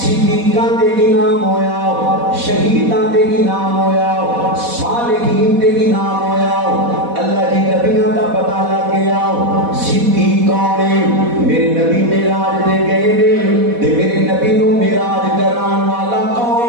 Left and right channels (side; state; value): left; late; 4.1 ms